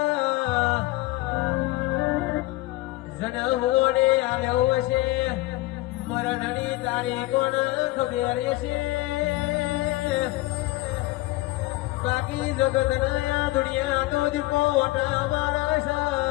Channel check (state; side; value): quieter; right; 19.4 dB